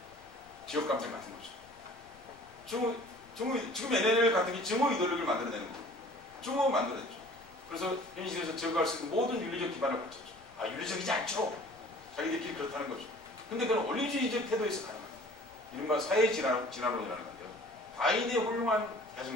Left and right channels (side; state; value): left; noise; rumble, 27 dB below the sound